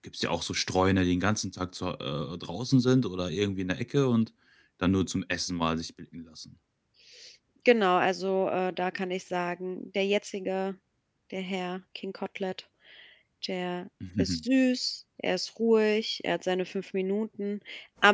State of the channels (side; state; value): both; identical; correlation 1.00